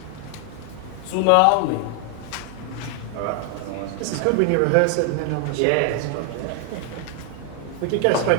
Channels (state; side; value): different; both; correlation 0.00